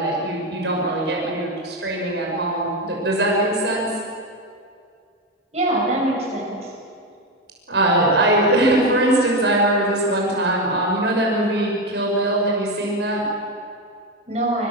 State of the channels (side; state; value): both; normal; correlation 0.12